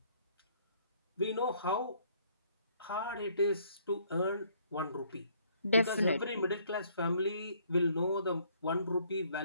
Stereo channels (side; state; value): both; inverted; correlation -0.63